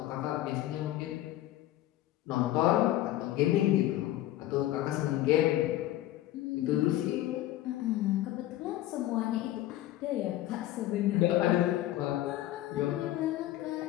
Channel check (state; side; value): quieter; right; 14.5 dB